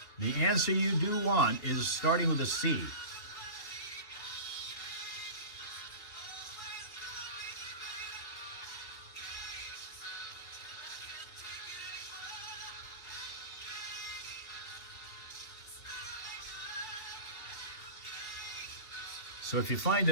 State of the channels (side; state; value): right; late; 3.1 ms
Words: The answer you do want is starting with a C. So if you find